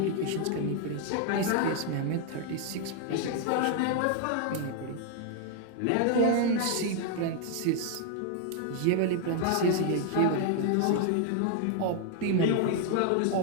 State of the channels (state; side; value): different; both; correlation 0.00